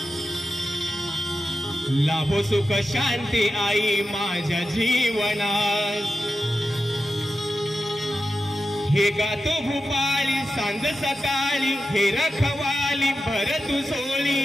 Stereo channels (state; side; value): normal; both; correlation 0.90